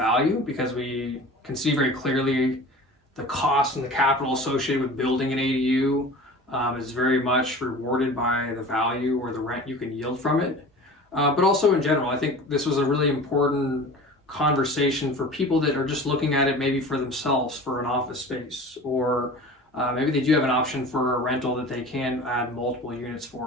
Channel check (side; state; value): both; normal; correlation 0.38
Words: because we can see very clearly the cost and the capital associated with building an ADU is very much rewarded by the value or the rent you can yield from it. But also in general, I think this was a really important conversation for people that are just looking at it maybe for themselves for an office space, or maybe they do have an option for a rental that they can add multiple units